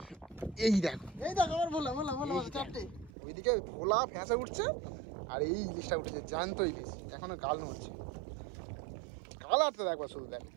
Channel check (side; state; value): left; drops out; at 3.1 s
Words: এই দেখো ওইদিকে ভোলা ফ্যাঁসা উঠছে আর এই ইলিশটা উঠেছে, জ্যান্ত ইলিশ, এখনো গাল নড়ছে। কালারটা দেখবা শুধু, দেখো।